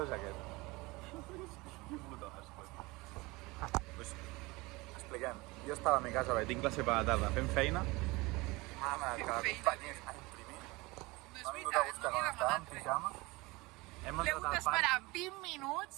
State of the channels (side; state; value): left; quieter; 23.0 dB